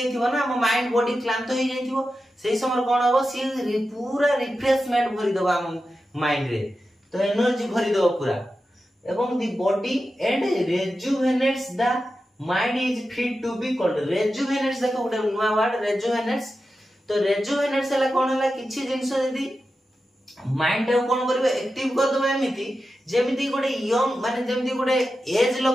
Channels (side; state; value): both; normal; correlation 0.91